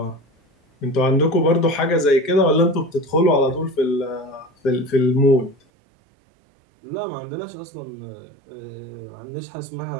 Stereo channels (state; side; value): drops out; left; at 5.6 s